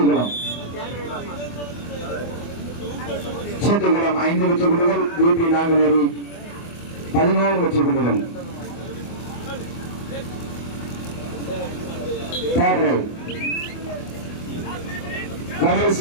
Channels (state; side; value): late; right; 24 ms